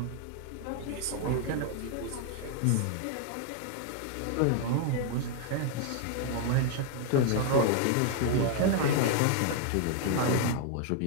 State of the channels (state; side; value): different; both; correlation 0.00